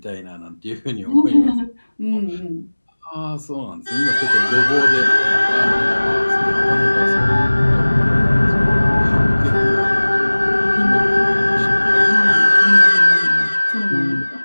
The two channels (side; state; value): both; inverted; correlation -1.00